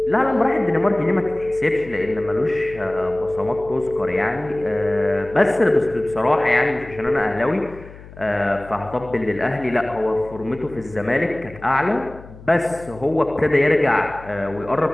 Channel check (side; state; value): left; noise; hum, 18 dB below the sound